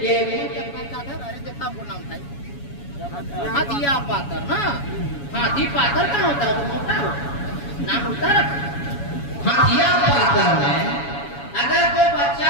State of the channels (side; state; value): right; late; 7.1 ms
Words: कि हाथिया पातर ना हाथी पातर कहाँ होता है तो मोटा हो नाम होता है हाथिया पातर में अगर कोई बच्चा